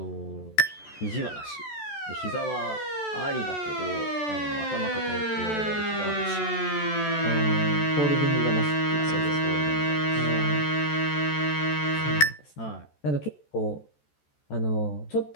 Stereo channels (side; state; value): right; late; 14 ms